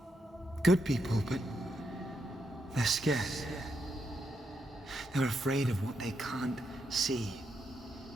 Good people, but they're scared. They're afraid of what they can't see.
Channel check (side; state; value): both; normal; correlation 0.81